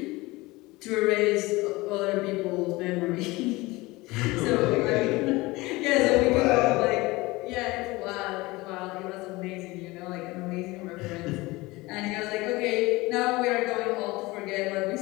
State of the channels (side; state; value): right; quieter; 21.5 dB